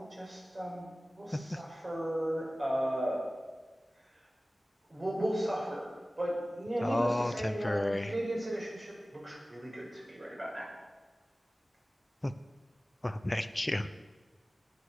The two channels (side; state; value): both; normal; correlation 0.97